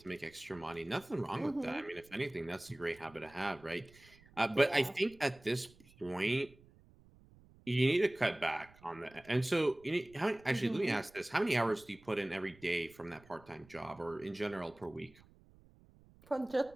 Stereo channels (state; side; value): noise; right; rumble, 25 dB below the sound